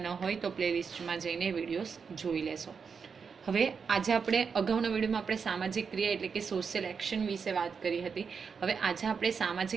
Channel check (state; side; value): quieter; left; 5.9 dB